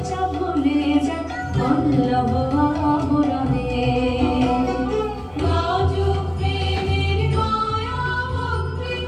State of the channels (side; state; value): left; noise; rumble, 29 dB below the sound